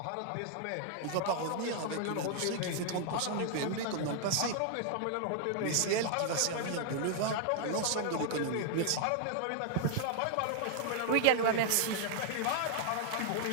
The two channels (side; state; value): both; different; correlation -0.01